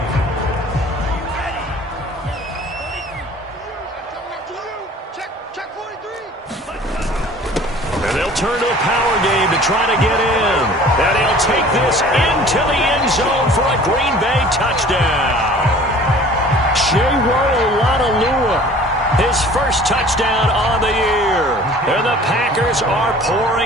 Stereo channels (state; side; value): normal; both; correlation 0.47